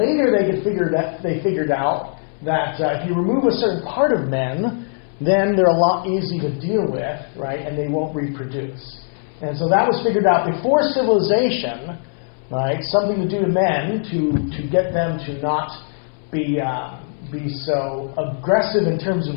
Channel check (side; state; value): right; silent; 65 dB below the other